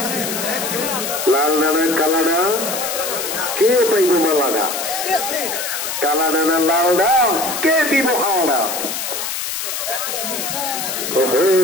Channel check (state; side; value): noise; left; hiss, 4 dB below the sound